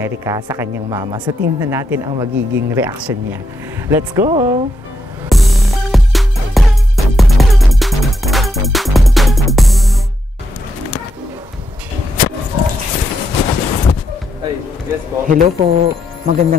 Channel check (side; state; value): both; normal; correlation 0.80